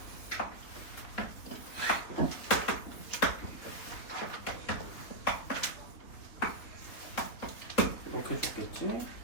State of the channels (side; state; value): right; late; 3.8 ms